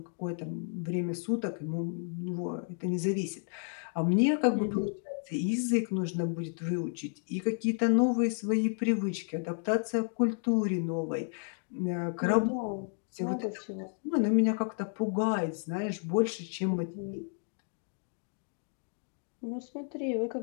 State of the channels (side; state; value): right; silent; 56 dB below the other